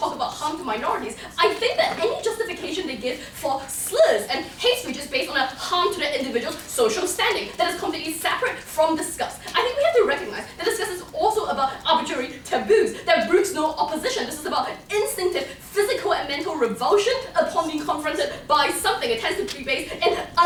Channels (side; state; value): both; identical; correlation 1.00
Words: about harm to minorities, I think that any justification they give for slurs and hate speech is based on a harm to the individual's social standing that is completely separate from disgust. I think we have to recognize that disgust is also about arbitrary taboos that brooks no opposition. This is about instinctive physical and mental revulsion upon being confronted by something. It tends to be based in